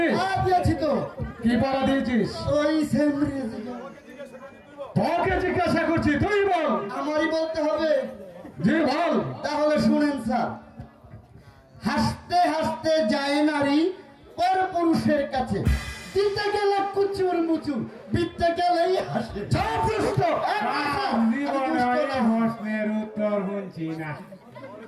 দিয়েছি তো। কি পড়া দিয়েছিস? ওই সেম। তোকে জিজ্ঞাসা করছি, তুই বল। আমারই বলতে হবে? জি বল। তাহলে শুনেন স্যার, হাসতে হাসতে যায় নারী পর পুরুষের কাছে, দিতে গেলে কুচুর মুচুর, বিতে গেলেই হাসে। প্রশ্নের উত্তর শুনছি না।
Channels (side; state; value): both; identical; correlation 1.00